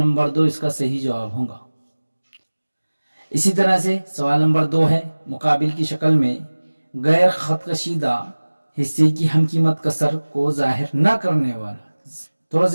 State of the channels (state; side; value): inverted; both; correlation -1.00